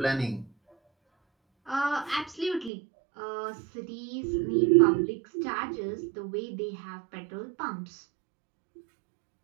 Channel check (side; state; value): left; drops out; at 2.7 s